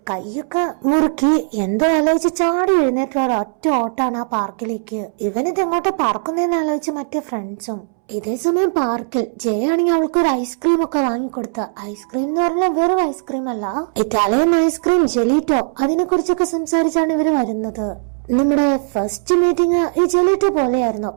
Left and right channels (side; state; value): left; silent; 67 dB below the other